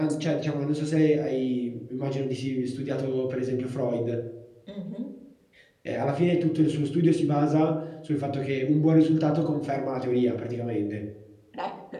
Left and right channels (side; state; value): both; identical; correlation 1.00